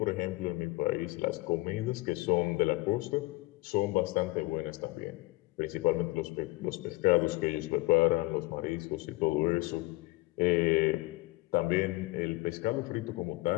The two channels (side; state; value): right; quieter; 21.6 dB